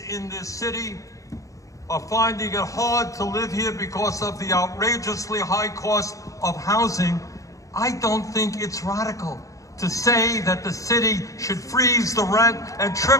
in this city are finding it hard to live here because of the outrageously high cost of housing, I don't think it's radical to say that the city should freeze the rent and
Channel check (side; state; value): right; late; 0.16 ms